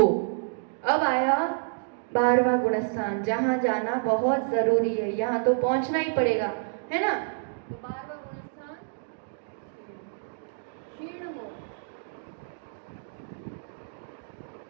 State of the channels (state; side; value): silent; left; digital silence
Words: अब आया 12वां गुणस्थान, जहां जाना बहुत जरूरी है, यहाँ तो पहुंचना ही पड़ेगा, है ना। तो 12वां गुणस्थान क्षीण मोह।